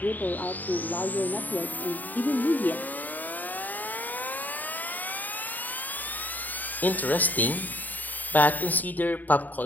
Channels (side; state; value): right; late; 0.084 ms